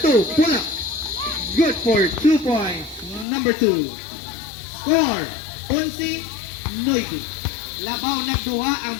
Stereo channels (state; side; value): drops out; right; at 3.2 s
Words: Pull up. Good for 2 points. Number 2. Score. 11-9. Labaw nagduha ang